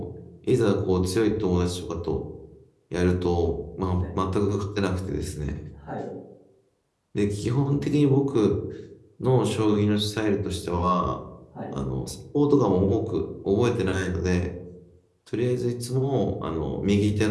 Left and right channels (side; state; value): both; identical; correlation 1.00